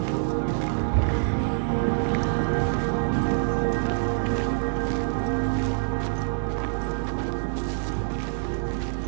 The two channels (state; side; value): silent; left; digital silence